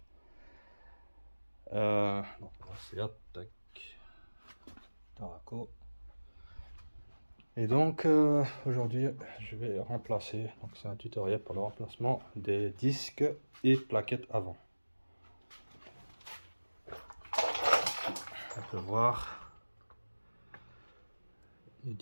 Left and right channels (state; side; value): inverted; both; correlation -1.00